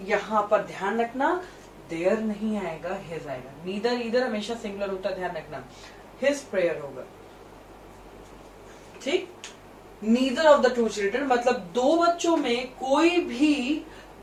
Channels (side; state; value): both; identical; correlation 1.00